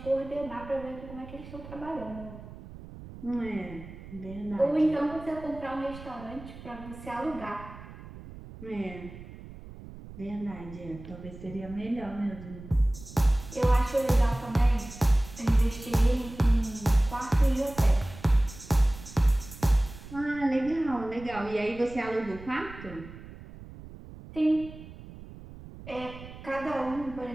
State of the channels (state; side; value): noise; right; rumble, 15 dB below the sound